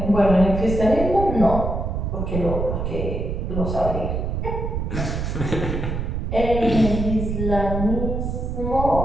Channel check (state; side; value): noise; right; rumble, 2 dB below the sound